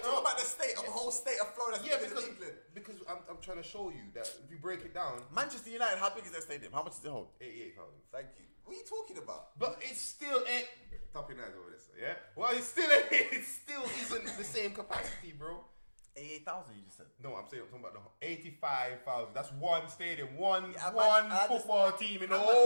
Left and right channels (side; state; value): both; inverted; correlation -1.00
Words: talking about the state of the whole state of Florida? Yeah, bigger than because England. I'm trying to show you that if you break it down, Manchester United, how big is their stadium? How much does it hold? 88,000. Thank you. What are you talking about? But it's still ain't topping eyes over this, yeah. Well, it still isn't the same capacity, bro. 88,000, you just said. No, I'm saying I'm talking about the 85,000. That's one stadium, one Yeah, football team in the